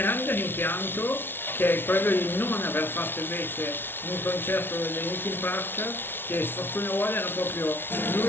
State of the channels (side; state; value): right; late; 0.11 ms